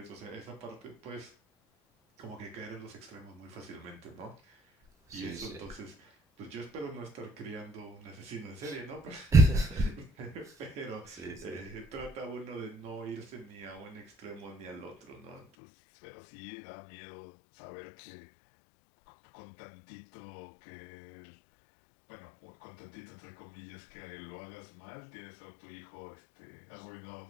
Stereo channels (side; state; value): right; drops out; at 15.4 s